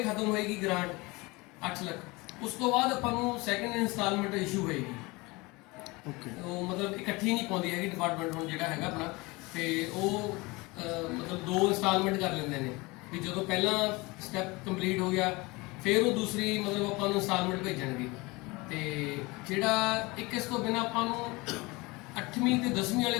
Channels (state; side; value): quieter; right; 24.0 dB